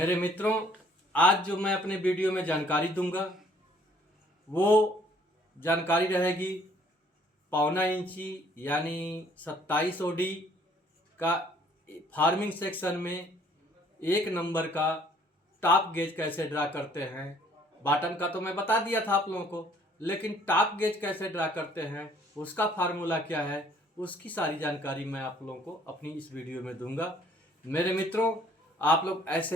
मित्रों, आज जो मैं अपने वीडियो में जानकारी दूंगा वो जानकारी रहेगी 1.25 इंची यानी 27 ओडी का फार्मिंग सेक्शन में 1 नंबर का टॉप गेज कैसे ड्रा करते हैं। बॉटम का तो मैं बता दिया था आप लोगों को, लेकिन टॉप गेज कैसे ड्रा करते हैं, उसका फार्मूला क्या है, उसकी सारी जानकारी मैं आप लोगों को अपनी इस वीडियो में दूंगा। मेरे मित्रों, आप लोग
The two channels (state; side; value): normal; both; correlation 0.60